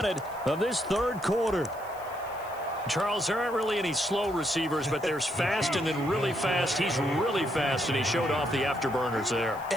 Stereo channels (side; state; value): left; noise; hiss, 22 dB below the sound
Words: of this third quarter. Charles, there aren't really any slow receivers, but there's fast and then really fast. He's really fast, and he showed off the afterburners there.